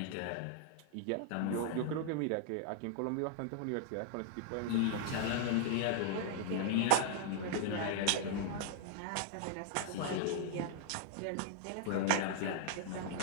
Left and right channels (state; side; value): different; both; correlation -0.01